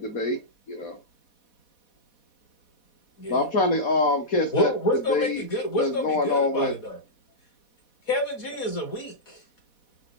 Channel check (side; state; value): right; late; 4.1 ms